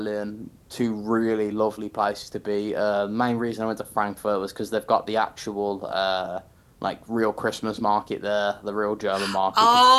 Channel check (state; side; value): identical; both; correlation 1.00